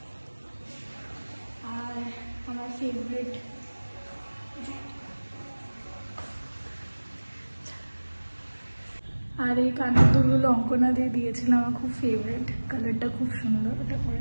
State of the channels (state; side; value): inverted; both; correlation -1.00